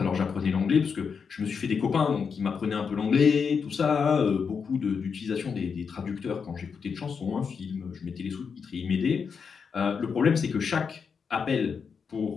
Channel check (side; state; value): right; quieter; 6.0 dB